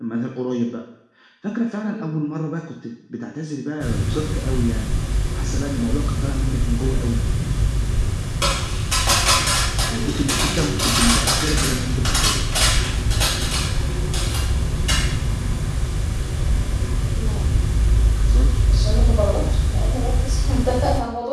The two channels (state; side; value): identical; both; correlation 1.00